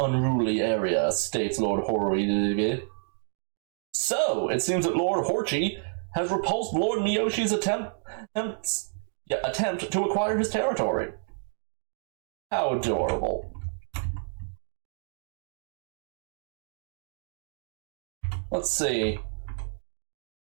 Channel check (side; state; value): left; silent; digital silence